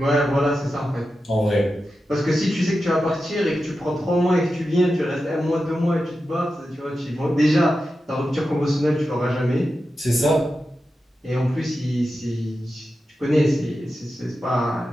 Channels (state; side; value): normal; both; correlation 0.91